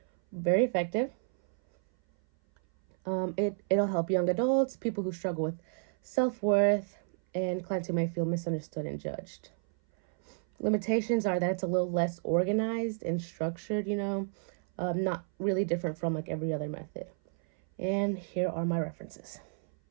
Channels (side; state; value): left; silent; 57 dB below the other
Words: very effective. It'll help young adults, people who struggle with self-worth, and clients who may feel misunderstood and judged. Limitations are that it's a little less organized and structured, not really different from every other method. And here are my references.